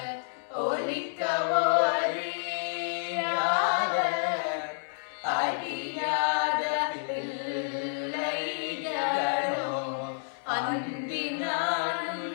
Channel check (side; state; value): right; silent; 58 dB below the other